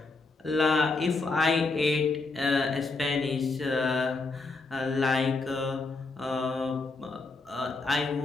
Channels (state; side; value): quieter; right; 3.7 dB